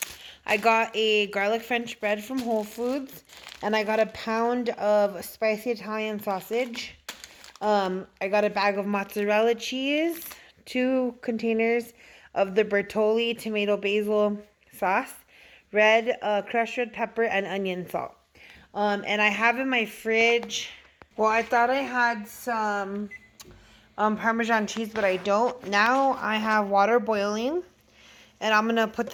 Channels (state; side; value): identical; both; correlation 1.00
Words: I got a garlic French bread from Whole Foods, and I got a pound of spicy Italian sausage. I got a bag of mozzarella cheese, 2 containers of the Bertolli tomato basil sauce, crushed red pepper, and onion salt. And I have in my fridge, well, I thought I had some Parmesan cheese, but I don't. Now I have water boiling, and I'm going to put